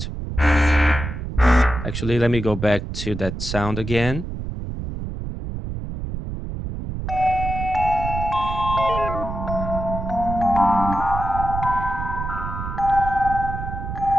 Actually, let me go back to that sound again.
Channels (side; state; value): right; noise; rumble, 6 dB below the sound